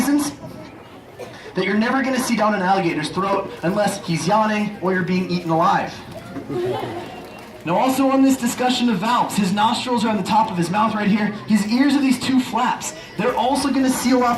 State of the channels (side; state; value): both; identical; correlation 1.00